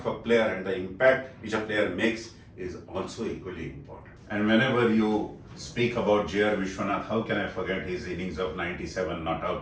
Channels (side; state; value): both; identical; correlation 1.00